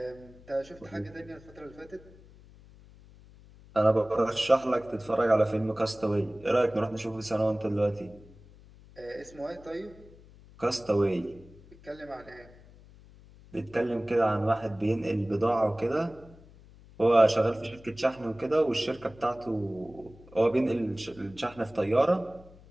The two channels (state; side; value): noise; left; hum, 23 dB below the sound